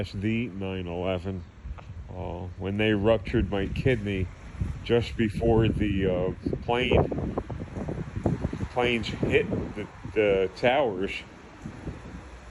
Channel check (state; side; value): identical; both; correlation 1.00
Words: the 9/11, when they ruptured my kidney just before the planes hit the towers.